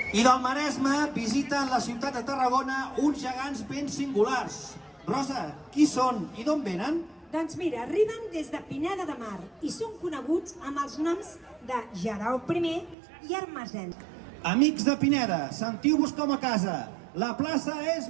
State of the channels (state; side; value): drops out; left; at 13.0 s